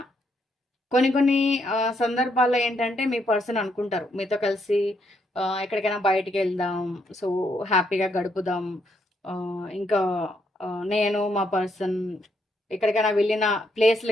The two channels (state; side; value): normal; both; correlation 0.75